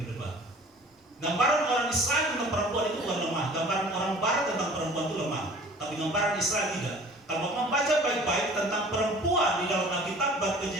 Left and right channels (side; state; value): both; normal; correlation 0.47